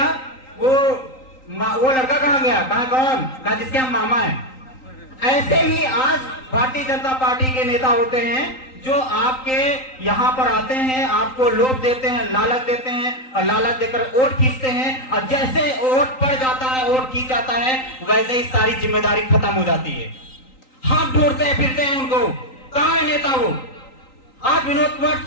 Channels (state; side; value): late; right; 3.9 ms